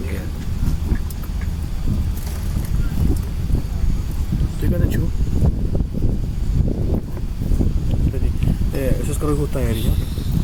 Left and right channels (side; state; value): both; identical; correlation 1.00